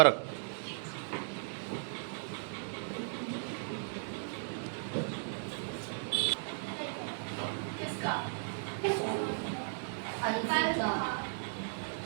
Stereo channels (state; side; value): silent; left; digital silence